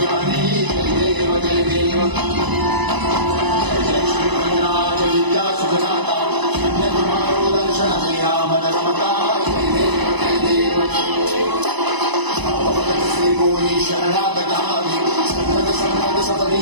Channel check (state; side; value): late; left; 1.0 ms